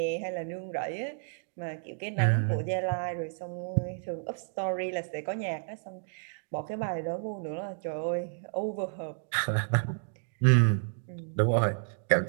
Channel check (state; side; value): silent; left; digital silence